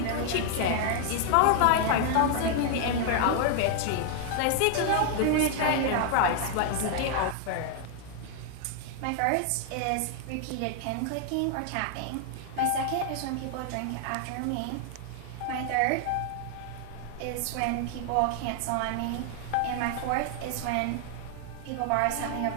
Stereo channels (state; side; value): different; both; correlation 0.00